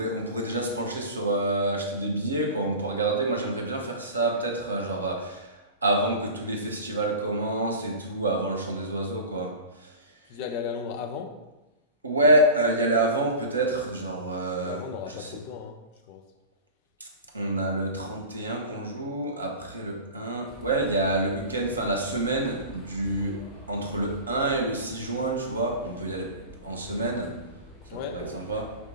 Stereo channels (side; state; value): both; inverted; correlation -0.35